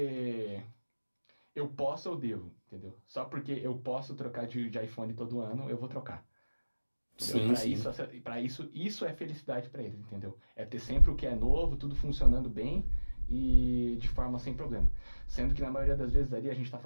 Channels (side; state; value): both; inverted; correlation -1.00